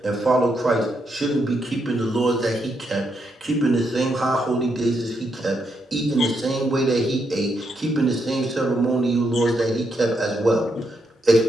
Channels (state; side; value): normal; both; correlation 0.79